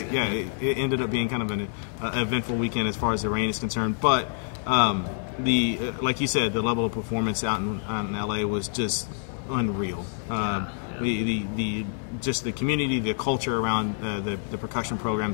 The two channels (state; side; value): silent; right; digital silence